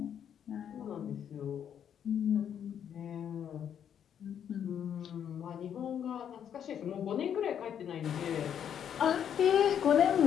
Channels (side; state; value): right; quieter; 8.9 dB